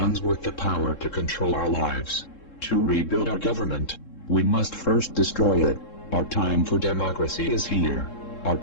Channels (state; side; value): late; right; 3.7 ms